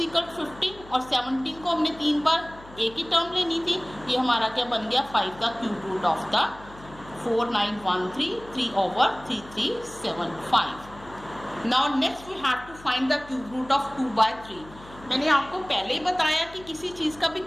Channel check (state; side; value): noise; left; hum, 20 dB below the sound